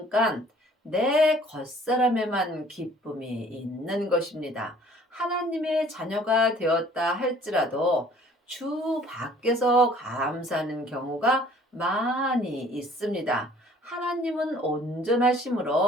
내 겉사람에만 기쁨이 있는 것입니다. 하나님의 자녀가 되었다 할지라도 주 밖에서 감사하는 경우가 많이 있습니다. 하나님은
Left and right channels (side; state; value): both; normal; correlation 0.55